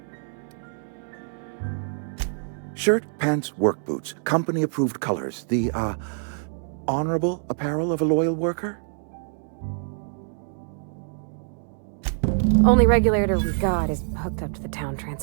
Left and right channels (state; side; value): silent; left; digital silence